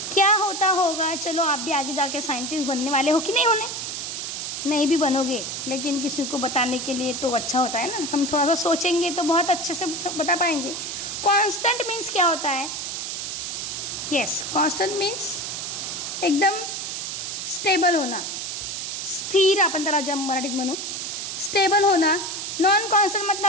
क्या होता होगा? चलो आप भी आगे जाके साइंटिस्ट बनने वाले हो कि नहीं होने? नहीं भी बनोगे, लेकिन किसी को बताने के लिए तो अच्छा होता है ना, हम थोड़ा सा सोचेंगे तो बहुत अच्छे से बता पाएंगे। कांस्टेंट मीन्स क्या होता है? यस, कांस्टेंट मीन्स एकदम स्टेबल होना, स्थिर, आपण त्याला जम मराठीत म्हणू स्टेबल होना। नॉन कांस्टेंट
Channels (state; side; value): noise; right; hiss, 5 dB below the sound